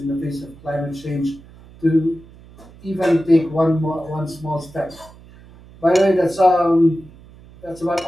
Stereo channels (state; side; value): noise; right; hum, 22 dB below the sound